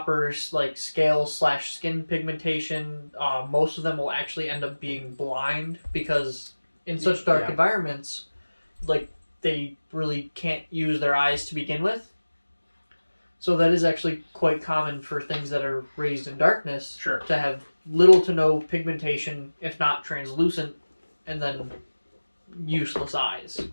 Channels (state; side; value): inverted; both; correlation -1.00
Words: scale/skin pigmentation. Most of them will actually end up being blind because in such dark environments, they really can't use their eyes to begin with. So that is actually quite common for things that are raised in darkness Sure. to have little to no pigmentation, if not translucent, and then useless eyes.